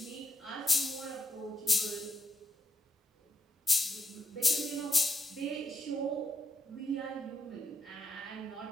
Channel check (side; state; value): both; normal; correlation 0.83